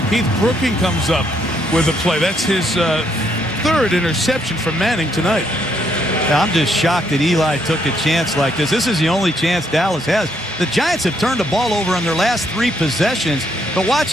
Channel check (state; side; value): normal; both; correlation 0.73